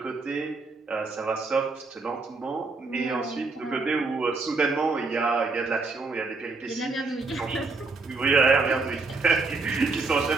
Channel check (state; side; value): quieter; left; 3.9 dB